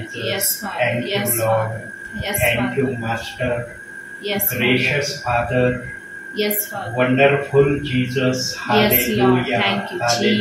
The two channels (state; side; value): identical; both; correlation 1.00